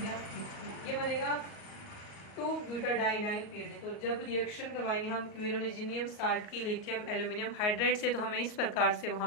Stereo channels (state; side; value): late; right; 38 ms